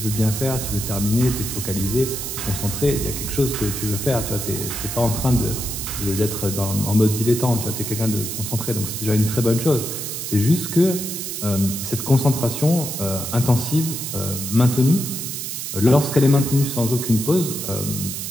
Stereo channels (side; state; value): right; noise; hiss, 5 dB below the sound